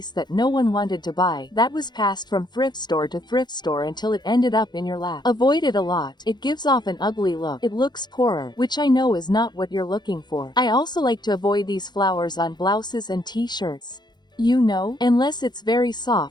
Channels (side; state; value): right; late; 0.21 ms